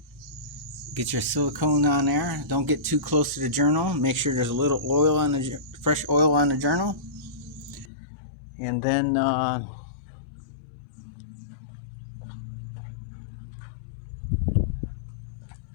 Get your silicone on there. Don't get too close to the journal. Make sure there's a little oil on the fresh oil on the journal. And then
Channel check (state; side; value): drops out; right; at 7.9 s